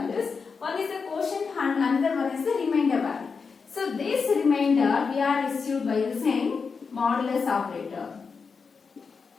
One is the quotient and another one is the remainder value. So this remainder we are received by using modulus operator.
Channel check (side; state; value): right; quieter; 5.2 dB